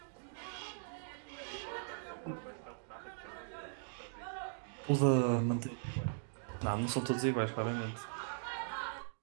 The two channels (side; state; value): left; silent; digital silence